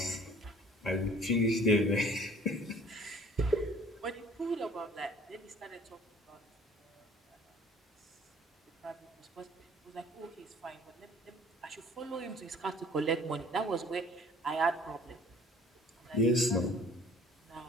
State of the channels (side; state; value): both; normal; correlation 0.52